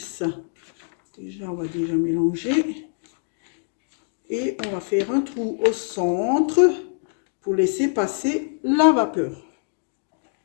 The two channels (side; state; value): right; silent; digital silence